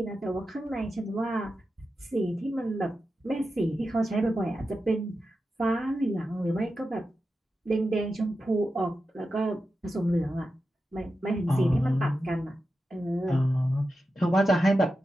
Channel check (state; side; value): normal; both; correlation 0.91